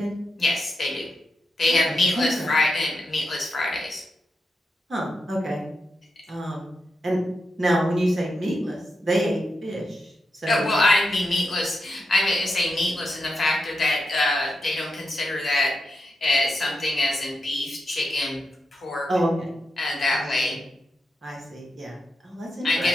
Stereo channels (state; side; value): normal; both; correlation 0.86